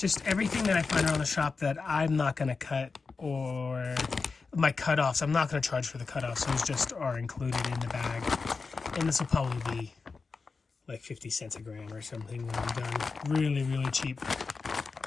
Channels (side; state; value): right; quieter; 4.5 dB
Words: everything that I find around the shop that I'm not going to cut, or my cutoffs. I'm not going to charge for the cutoffs. Those just are included in the bag. And this will probably be like 50 cents a gram or something when I'm done. Really, really cheap.